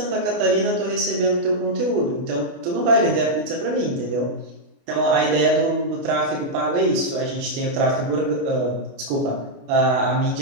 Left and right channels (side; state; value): left; late; 29 ms